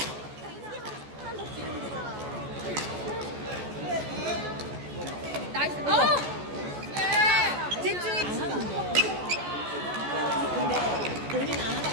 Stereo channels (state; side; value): late; left; 14 ms